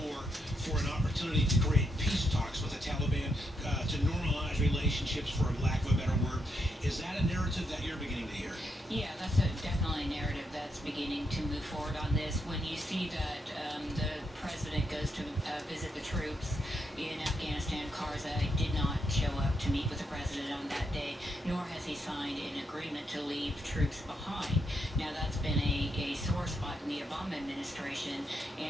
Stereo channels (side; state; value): both; normal; correlation 0.80